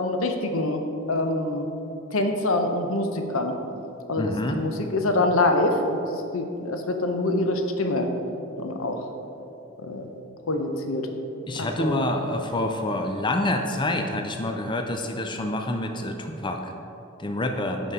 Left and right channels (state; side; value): normal; both; correlation 0.16